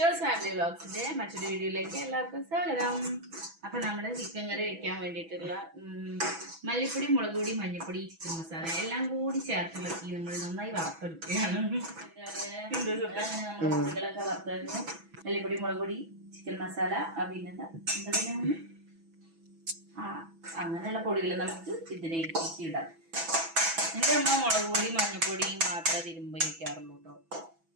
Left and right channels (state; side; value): late; left; 6.1 ms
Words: family വ്ളോഗ്സിന്റെ മറ്റൊരു വീഡിയോയിലേക്ക് എല്ലാവർക്കും സ്വാഗതം. അപ്പൊ നമ്മുടെ ചിക്കൻ കറി വെക്കാൻ വേണ്ടിയിട്ടുള്ള മല്ലിപ്പൊടി, മുളക് പൊടി, മഞ്ഞൾപ്പൊടി, ചിക്കൻ മസാല എല്ലാം കൂടി ചേർത്തിളക്കി നമ്മൾ നന്നായി വറുത്തെടുക്കുകയാണ്. നമ്മുടെ പൊടികളൊക്കെ വറുത്തായിരുന്നു. മല്ലിപ്പൊടി, മുളക് പൊടി, ചിക്കൻ മസാല, പിന്നെന്താ അങ്ങനെയുള്ള പൊടികൾ നമുക്ക് ഇതിലേക്ക് ഇടാം. എൻ്റെ അമ്മ മുളക് പൊടി, മഞ്ഞൾപ്പൊടി മാത്രമേ തിരുമ്പ് വയ്ക്കാറുള്ളൂ കേട്ടോ.